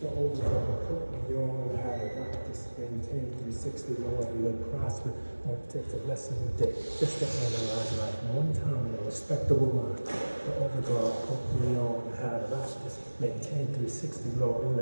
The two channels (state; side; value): inverted; both; correlation -1.00